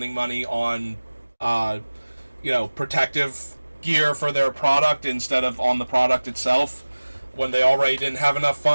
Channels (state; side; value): inverted; both; correlation -1.00